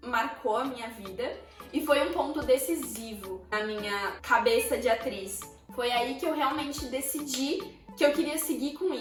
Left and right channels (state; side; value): identical; both; correlation 1.00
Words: marcou a minha vida e foi um ponto decisivo na minha cabeça de atriz. Foi aí que eu realmente decidi que eu queria seguir com